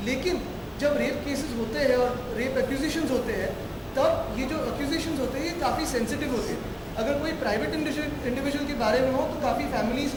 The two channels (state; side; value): identical; both; correlation 1.00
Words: लेकिन जब रेप केसेस होते हैं और रेप एक्यूजेशंस होते हैं, तब ये जो एक्यूजेशंस होते हैं ये काफ़ी सेंसिटिव होते हैं। अगर कोई प्राइवेट इंडिविजुअल के बारे में हो तो काफ़ी फैमिलीज